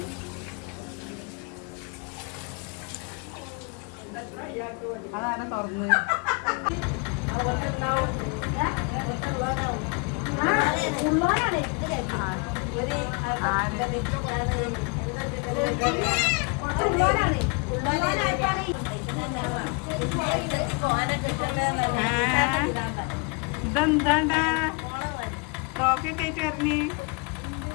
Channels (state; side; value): quieter; right; 31.8 dB